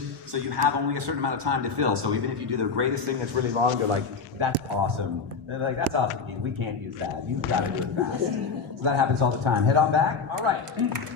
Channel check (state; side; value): quieter; right; 5.1 dB